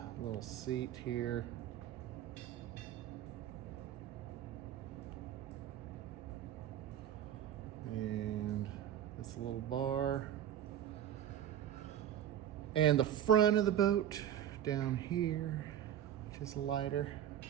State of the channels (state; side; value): quieter; left; 10.8 dB